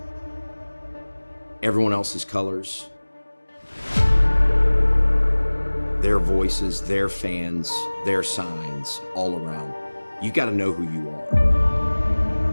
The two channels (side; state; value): both; inverted; correlation -1.00